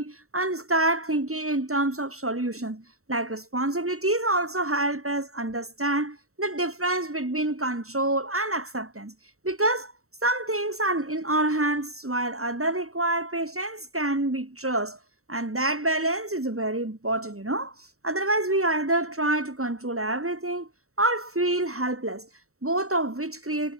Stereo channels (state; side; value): late; left; 0.64 ms